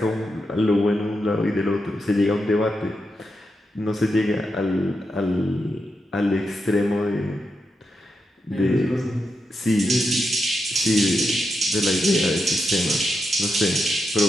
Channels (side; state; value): both; normal; correlation 0.86